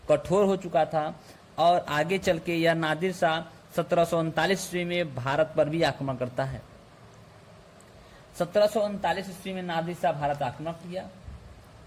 कठोर हो चुका था, और आगे चल के यह नादिर शाह 1739 ईस्वी में भारत पर भी आक्रमण करता है। 1739 ईस्वी में नादिर शाह भारत आक्रमण किया।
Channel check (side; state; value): both; identical; correlation 1.00